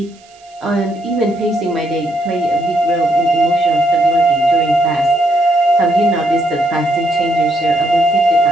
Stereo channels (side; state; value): right; noise; hiss, 29 dB below the sound